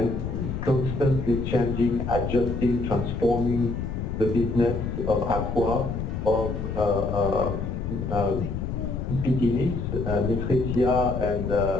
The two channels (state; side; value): noise; left; rumble, 4 dB below the sound